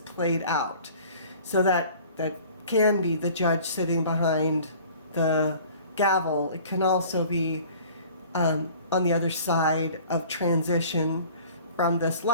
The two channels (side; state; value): both; inverted; correlation -0.48